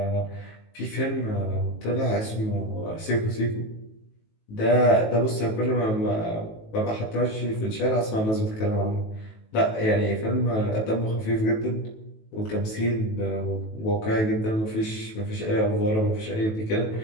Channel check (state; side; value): late; right; 18 ms